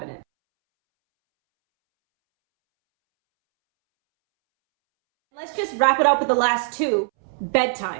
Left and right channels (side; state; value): left; silent; 65 dB below the other